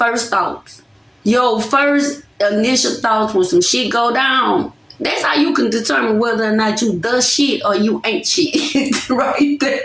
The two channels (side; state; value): both; identical; correlation 1.00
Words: thoughts, your first initial thoughts when some shit go down, that's how you can determine whether or not you the shit or you ain't shit. Right there.